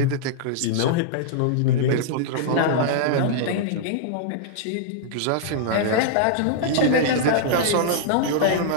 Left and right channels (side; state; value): both; different; correlation -0.01